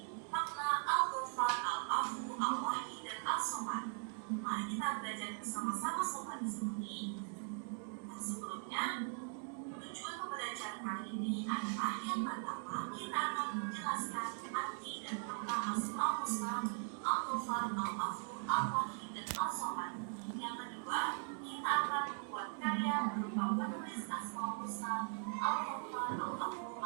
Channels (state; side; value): silent; left; 51 dB below the other